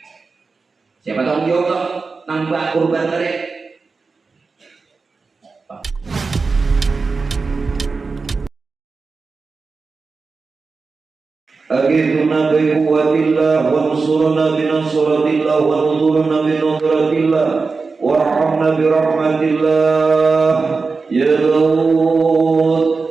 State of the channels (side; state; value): left; quieter; 4.4 dB